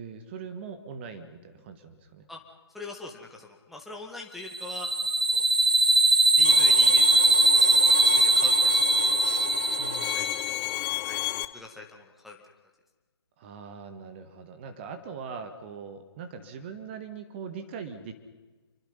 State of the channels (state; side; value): normal; both; correlation 0.49